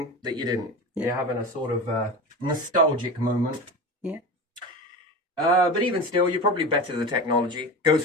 that you didn't. You're having a sort of nostalgic moment. Yeah. But even still, you're probably better the technology. Goes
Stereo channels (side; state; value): both; normal; correlation 0.28